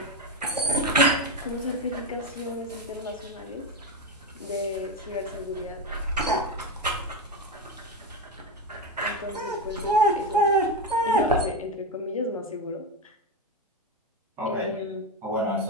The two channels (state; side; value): normal; both; correlation 0.13